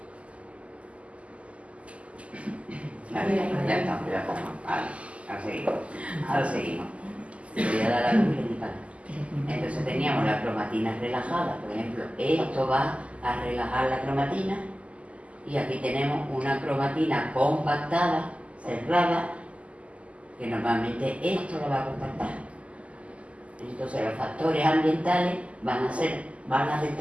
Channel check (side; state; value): left; late; 0.062 ms